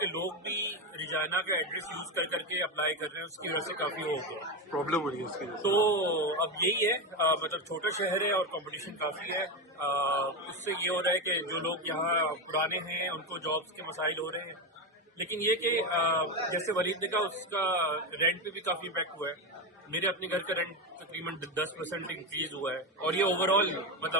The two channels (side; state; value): both; normal; correlation 0.14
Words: लोग भी रिजाइना का एड्रेस यूज कर करके अप्लाई कर रहे हैं, उसकी वजह से काफी हो गया, प्रॉब्लम हो रही है उसकी। तो अब यही है, मतलब छोटा शहर है और कंपटीशन काफी है। उससे ये हो रहा है कि जो लोग यहाँ पुराने हैं उनको जॉब्स के मसाइल हो रहे हैं। लेकिन ये कि जैसे वलीद ने कहा, उसका रेंट पे भी काफी इम्पैक्ट हुआ है। मेरे अपने घर का रेंट तकरीबन 10% इंक्रीज हुआ है, और ये ओवरऑल